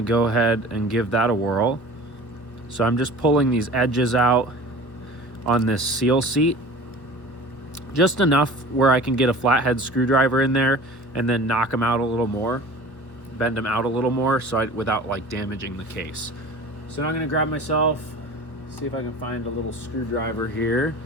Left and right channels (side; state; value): right; late; 1.2 ms